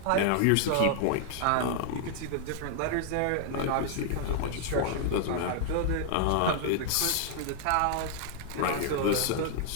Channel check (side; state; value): both; different; correlation 0.00